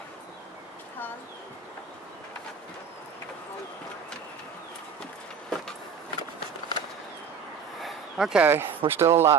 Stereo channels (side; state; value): left; quieter; 6.3 dB